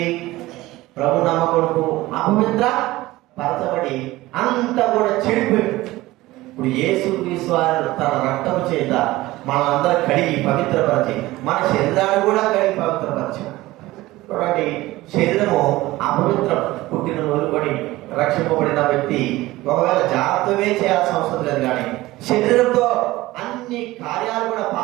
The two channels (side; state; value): left; quieter; 18.2 dB